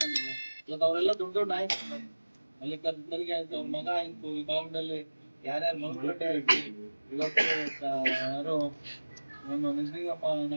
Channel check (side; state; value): both; inverted; correlation -1.00